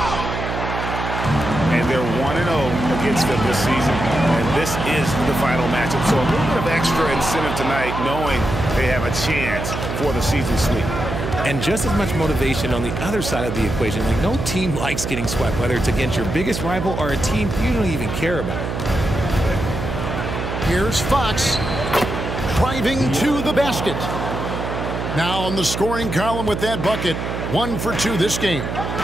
And they're 1-0 against them this season. And this is the final matchup. So a little bit of extra incentive tonight, knowing they have a chance for the season sweep. And just as much motivation on the other side of the equation. Like, no team likes getting swept, whether it's against your biggest rival or a team you don't even care about. Here's Fox driving to the basket. Now on the scoring column with that bucket. 1 for 2 this game.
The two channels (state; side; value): noise; right; hum, 4 dB below the sound